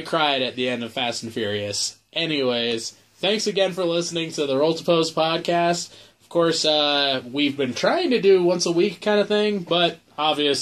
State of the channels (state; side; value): identical; both; correlation 1.00